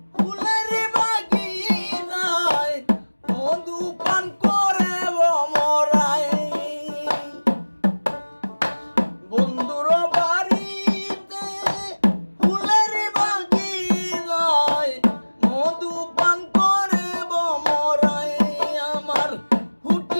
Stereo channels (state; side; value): inverted; both; correlation -1.00